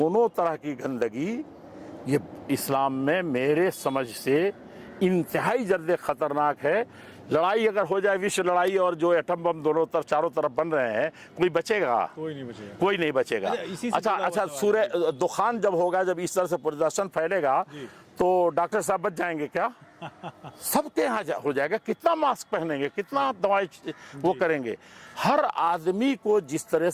तरह की गंदगी ये इस्लाम में मेरे समझ से इंतहाई जल्द ख़तरनाक है। लड़ाई अगर हो जाए, विश्व लड़ाई, और जो एटम बम दोनों तरफ चारों तरफ बन रहे हैं, कोई बचेगा? कोई नहीं बचेगा। अच्छा, सूर्य दुखान जब होगा, जब इस तरह से प्रदर्शन फैलेगा, तो डॉक्टर साहब बच जाएंगे क्या? सबके यहाँ हो जाएगा। कितना मास्क पहनेंगे, कितना दवाई वो करेंगे। हर आदमी को जिस तरह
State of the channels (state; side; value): identical; both; correlation 1.00